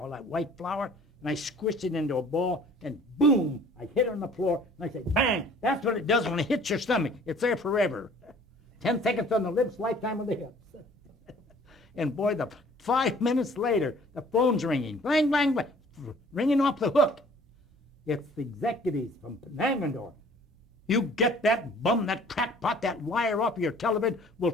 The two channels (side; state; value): both; normal; correlation 0.53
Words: that white flour. And I squished it into a ball, and boom, I hit it on the floor, and I said, bang, that's what it does when it hits your stomach. It's there forever. 10 seconds on the lips, lifetime on the hips. And boy, 5 minutes later, the phone's ringing, blang, blang, blang, ringing off the hook. It's the executives from Langendorf. You get that bum, that crackpot, that liar off of your television, we're